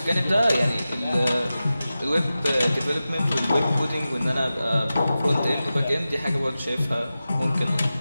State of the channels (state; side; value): inverted; both; correlation -0.94